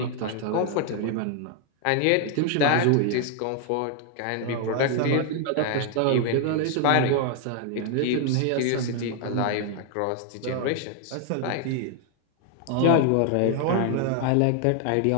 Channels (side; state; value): both; different; correlation 0.00